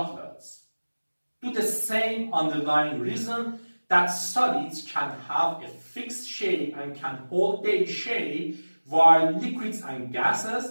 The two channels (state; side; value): inverted; both; correlation -1.00